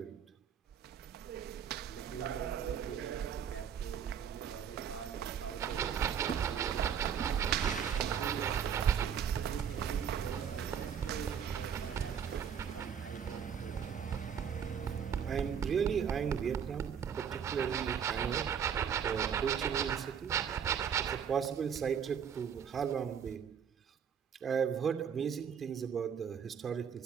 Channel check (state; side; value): quieter; left; 7.8 dB